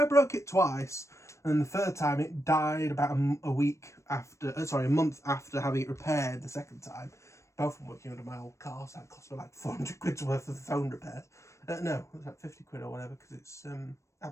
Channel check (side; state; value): right; late; 0.14 ms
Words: broke it twice, and the third time it died about a month after having it repaired the second time. Both of them working under my old car, so that cost me like 400 quid's worth of phone repairs. No, it was like 50 quid or whatever, because it's